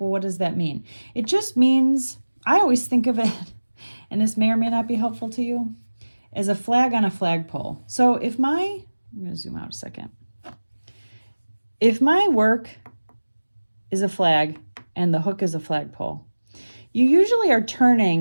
what does that mean? It just means, I always think of it, and this may or may not be helpful to you, as a flag on a flagpole. So if I'm gonna zoom out a second. If my work is a flag and the hook is a flagpole, you usually are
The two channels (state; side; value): inverted; both; correlation -1.00